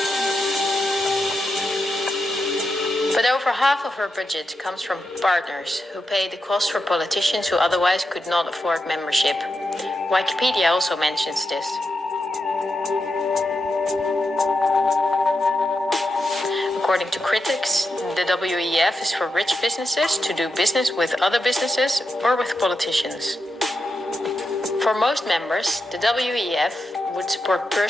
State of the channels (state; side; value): normal; both; correlation 0.87